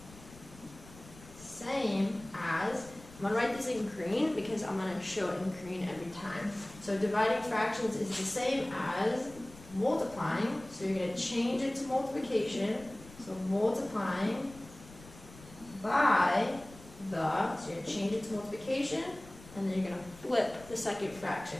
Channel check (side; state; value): left; noise; rumble, 20 dB below the sound